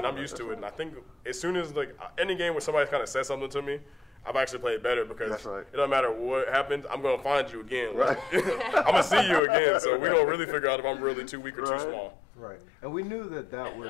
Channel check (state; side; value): drops out; right; at 9.4 s